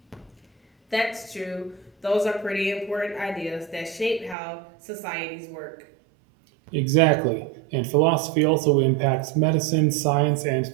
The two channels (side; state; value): left; drops out; at 4.4 s